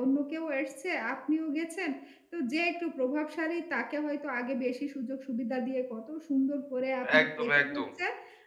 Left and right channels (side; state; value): both; identical; correlation 1.00